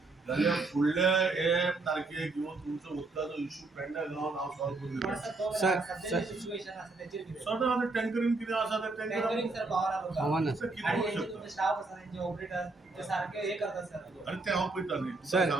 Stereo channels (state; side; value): quieter; left; 3.4 dB